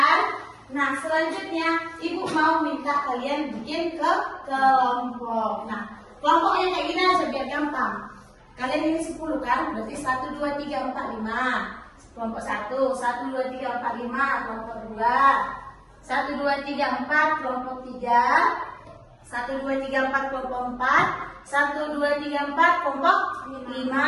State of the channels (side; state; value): both; identical; correlation 1.00